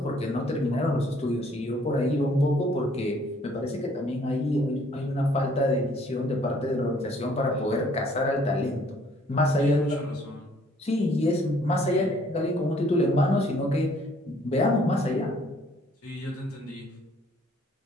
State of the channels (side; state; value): both; normal; correlation 0.61